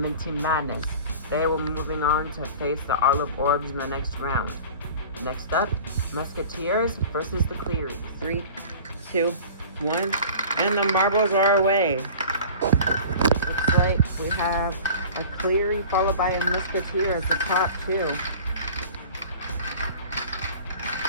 Madness. They will be moving on to face the Olive Orbs in the next round. Next up, Musketeers versus the Clearies. 3, 2, 1, and the marbles are away. Looks like we have a Cleary followed by a Musketeer as the top 2.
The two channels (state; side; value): inverted; both; correlation -0.41